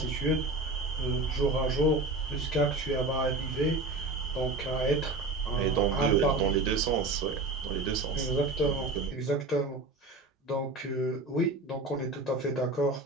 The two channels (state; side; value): quieter; left; 3.0 dB